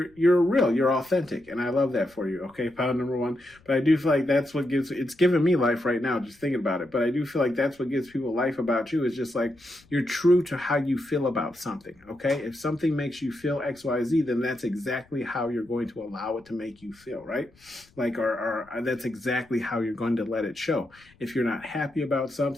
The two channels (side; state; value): left; noise; rumble, 30 dB below the sound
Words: real, you're authentic. And I love that for you. Okay. Pound number one. But I do feel like that's what it's giving me life right now, just thinking about it. But I do feel like that's what gives people life about you, is just like, you're true to how you feel about something. Okay. If something makes you feel XYZ, then that's exactly how you're going to allow it to make you feel, right? Like, or that's exactly how you're going to let it show. If you're not happy about